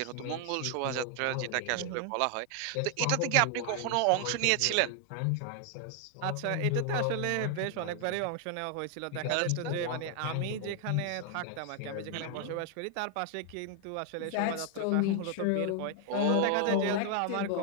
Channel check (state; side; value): different; both; correlation 0.00